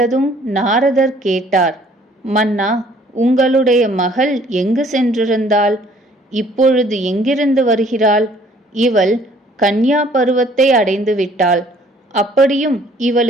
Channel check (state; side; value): normal; both; correlation 0.58